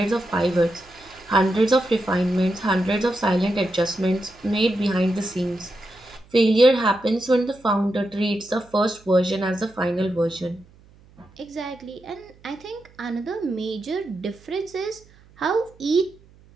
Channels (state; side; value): noise; right; hum, 27 dB below the sound